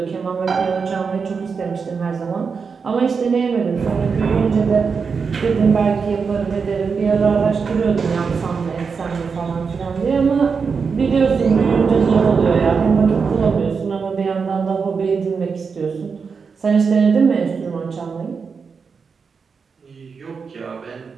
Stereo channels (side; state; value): left; quieter; 5.5 dB